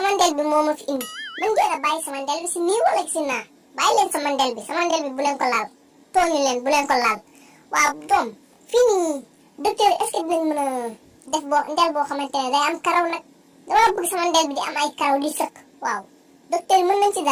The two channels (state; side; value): identical; both; correlation 1.00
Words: ndel bi moo ma fi indi man ngeen a bàyyi sama ndel bi si nii wala si naa bàyyi leen sama ndel bi bu leen ko laal tooñu leen bu leen ko laal waaw doom fii nii docteur est-ce que dinañ mën a def ndel boo xamante ne day am karaw nag dama bëgg sama ndel bi di am ay karaw di sëkk waaw docteur yi mën nañ ci